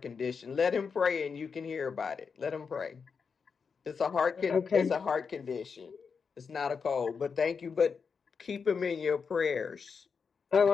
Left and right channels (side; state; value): right; quieter; 5.7 dB